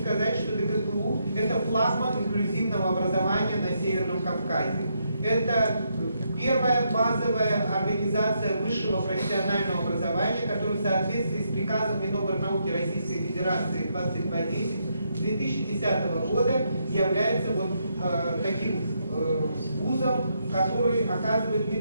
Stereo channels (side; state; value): both; inverted; correlation -0.78